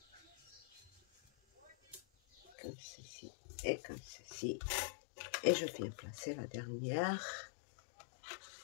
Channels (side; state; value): right; drops out; at 2.5 s